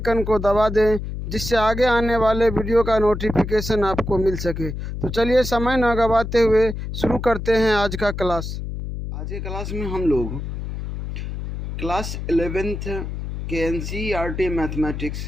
को दबा दें, जिससे आगे आने वाले वीडियो का नोटिफिकेशन आपको मिल सके। तो चलिए समय न गंवाते हुए शुरू करते हैं आज का क्लास। आज की क्लास में हम लोग क्लास 11th के NCERT मैथमेटिक्स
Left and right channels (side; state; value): left; noise; hum, 6 dB below the sound